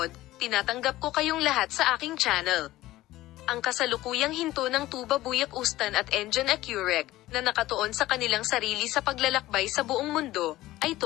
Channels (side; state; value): right; quieter; 16.4 dB